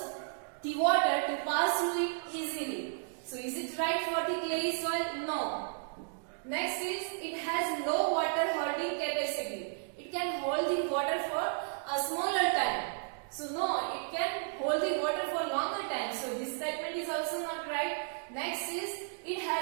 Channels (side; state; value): left; silent; digital silence